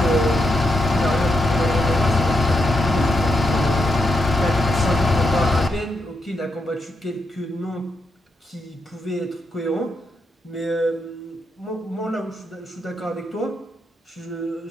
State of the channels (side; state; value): both; normal; correlation 0.82